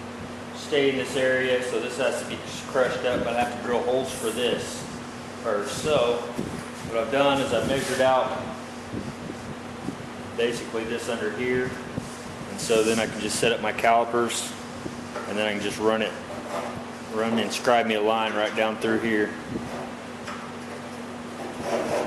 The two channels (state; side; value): identical; both; correlation 1.00